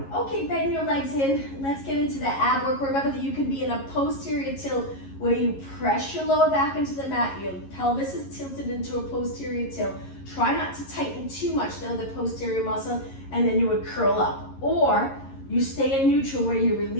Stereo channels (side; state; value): right; late; 11 ms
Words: Okay, bend your legs in. Let's get into the ab work. Remember that you can be in a posterior tilt where you press your lower back into the mat, your pelvis is tilted into a posterior tilt. Try not to tighten too much though, the posterior muscle, and then you would curl up. Or you stay in neutral where you